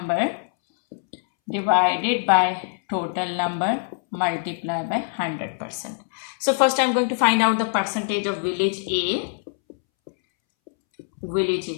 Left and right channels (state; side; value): silent; right; 63 dB below the other